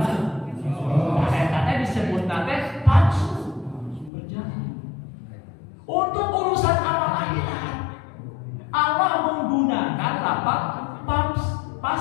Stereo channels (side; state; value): right; drops out; at 4.1 s